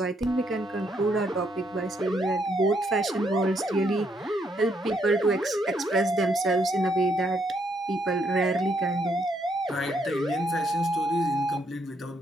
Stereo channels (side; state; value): both; normal; correlation 0.74